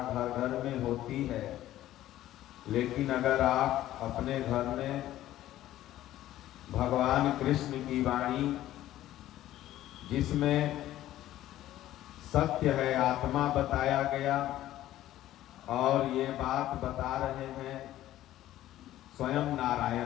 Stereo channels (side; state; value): right; quieter; 13.9 dB